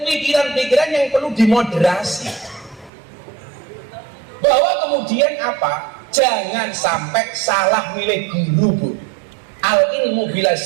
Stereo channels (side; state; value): left; drops out; at 2.9 s